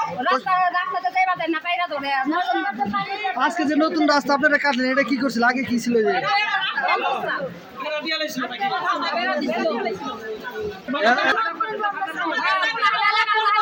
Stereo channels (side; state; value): both; identical; correlation 1.00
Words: আজকে যে নতুন রাস্তা আপনারা কাটলেন, এটা কি করছিল, আগে কি ছিল?